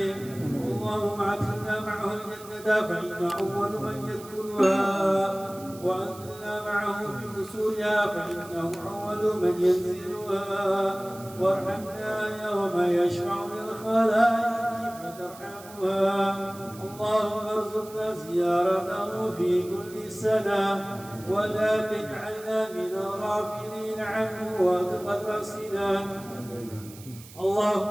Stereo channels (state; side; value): noise; right; hiss, 19 dB below the sound